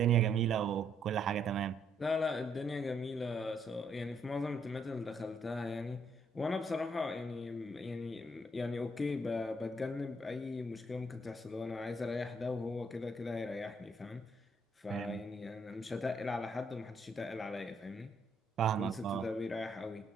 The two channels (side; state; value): both; normal; correlation 0.71